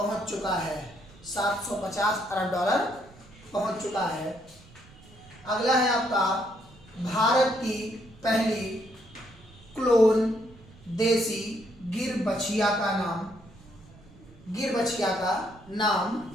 चुका है। 750 अरब डॉलर पहुंच चुका है। अगला है आपका भारत की पहली क्लोन देसी गिर बछिया का नाम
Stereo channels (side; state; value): right; noise; rumble, 23 dB below the sound